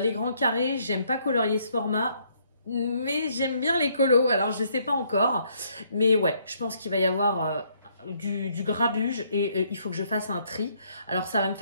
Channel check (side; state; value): both; inverted; correlation -0.69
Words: grands carrés, j'aime pas colorier ce format. Mais j'aime bien les colos, alors je sais pas encore. Mais ouais, je pense qu'il va y avoir du grabuge et il faut que je fasse un tri. Alors ça va me